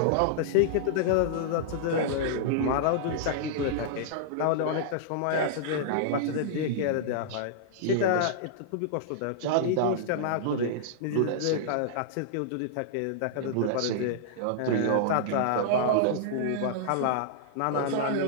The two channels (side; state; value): both; different; correlation -0.02